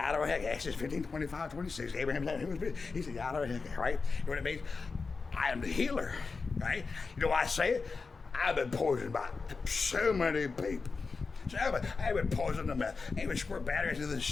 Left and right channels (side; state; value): right; quieter; 4.5 dB